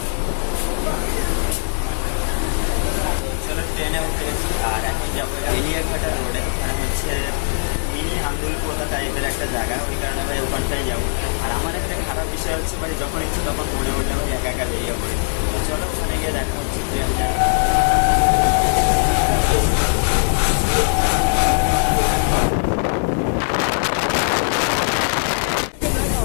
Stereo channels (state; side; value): silent; right; 66 dB below the other